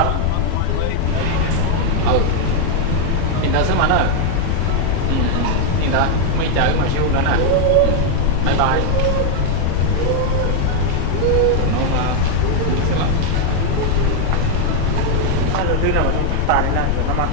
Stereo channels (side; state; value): both; different; correlation 0.00